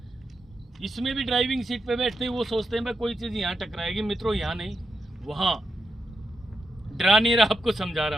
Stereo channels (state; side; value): normal; both; correlation 0.85